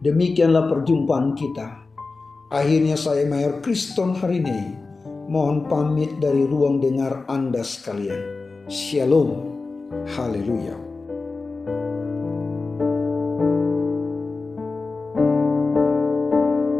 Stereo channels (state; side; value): quieter; right; 3.9 dB